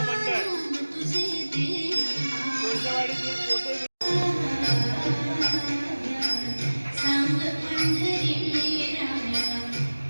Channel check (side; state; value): both; inverted; correlation -1.00